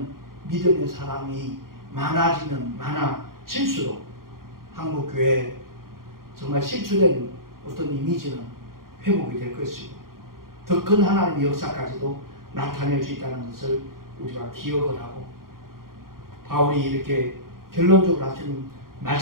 믿음의 사람이 많아지면 많아질수록 한국교회 정말 실추된 어떤 이미지는 회복이 될 것이고 더 큰 하나님의 역사까지도 나타낼 수 있다는 것을 우리가 기억을 하고, 바울이 이렇게 결론적으로 하신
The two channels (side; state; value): left; late; 0.92 ms